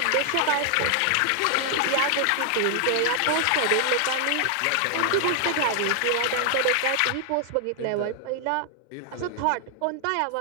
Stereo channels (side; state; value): both; different; correlation 0.00